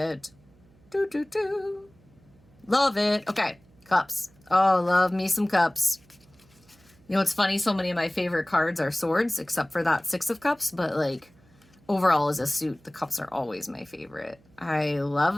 Do, do, do. Love it. Okay, cups. Oh, love me some cups. You know, it's funny, so many of my favorite cards are swords, except for that 6 of cups, but like overall as a suit, the cups are always my favorite. I love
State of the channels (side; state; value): right; noise; hum, 29 dB below the sound